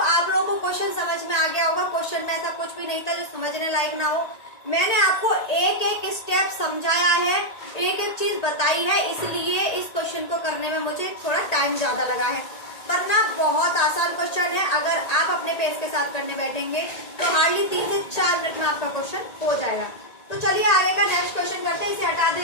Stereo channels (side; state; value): right; late; 1.8 ms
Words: आप लोगों को क्वेश्चन समझ में आ गया होगा। क्वेश्चन में ऐसा कुछ भी नहीं था जो समझने लायक ना हो। मैंने आपको एक एक स्टेप समझाया है, एक एक चीज बताई है, इसलिए इस क्वेश्चन को करने में मुझे थोड़ा टाइम ज्यादा लगा है, वरना बहुत आसान क्वेश्चन है। अगर आप अपने पेस के साथ करने बैठेंगे तो हार्डली 3 से 4 मिनट में आपका क्वेश्चन हो जाएगा। तो चलिए आगे का नेक्स्ट क्वेश्चन करते हैं। इसे हटा